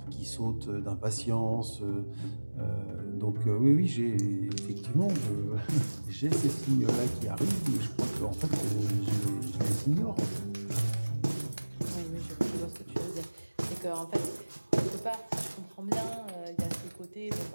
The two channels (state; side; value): inverted; both; correlation -1.00